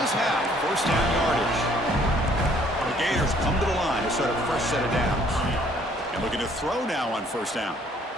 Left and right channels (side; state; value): both; normal; correlation 0.61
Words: have 1st down yardage. The Gators come to the line to start a fresh set of downs. And looking to throw now on 1st down.